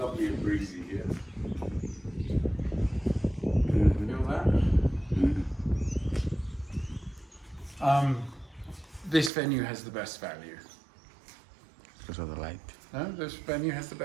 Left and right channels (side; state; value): left; drops out; at 9.3 s